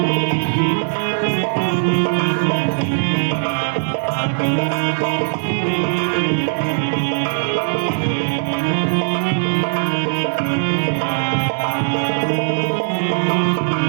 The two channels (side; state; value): left; silent; digital silence